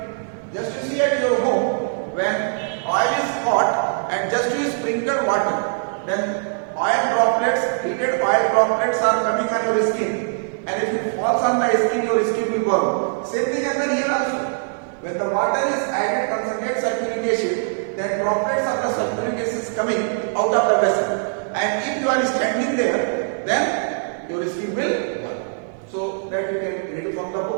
Just to see at your home, when oil is hot and just you sprinkle water, then oil droplets, heated oil droplets are coming on your skin. And if it falls on the skin, your skin will burn. Same thing happens here also. When the water is added concentrated sulfuric acid, then droplets of the sulfuric acid is coming out of the vessel. And if you are standing there, then your skin will burn. So that you can read from the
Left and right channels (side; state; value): left; silent; digital silence